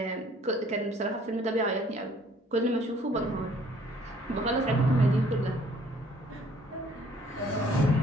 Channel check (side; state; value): both; normal; correlation 0.59